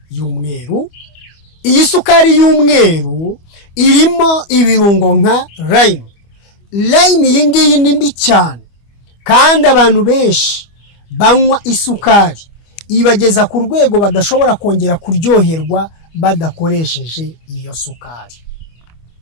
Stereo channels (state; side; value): late; right; 25 ms